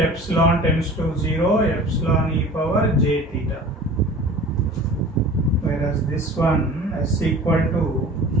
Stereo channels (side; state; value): both; normal; correlation 0.42